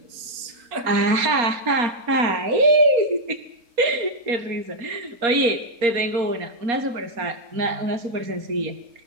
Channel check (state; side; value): late; left; 4.3 ms